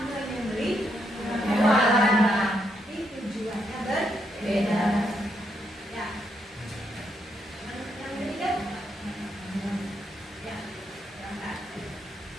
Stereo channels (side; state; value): both; normal; correlation 0.77